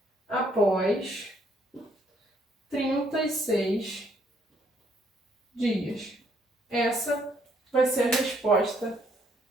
após 36 dias. Essa vai ser a resposta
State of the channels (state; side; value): normal; both; correlation 0.69